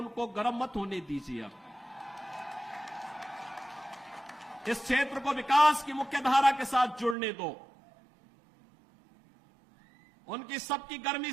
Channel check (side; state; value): left; drops out; at 7.2 s